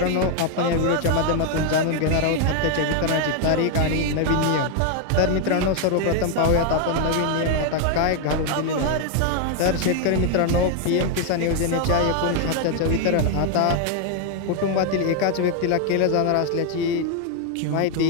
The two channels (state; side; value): different; both; correlation 0.01